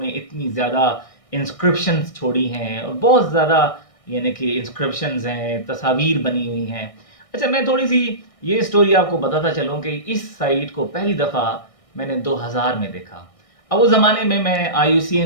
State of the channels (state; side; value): late; right; 1.6 ms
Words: इतनी ज़्यादा इंस्क्रिप्शंस छोड़ी हैं और बहुत ज़्यादा, यानी कि इंस्क्रिप्शंस हैं, तस्वीर बनी हुई हैं। अच्छा, मैं थोड़ी सी ये स्टोरी आपको बताता चलूँ कि इस साइट को पहली दफ़ा मैंने 2000 में देखा। अब उस ज़माने में मैं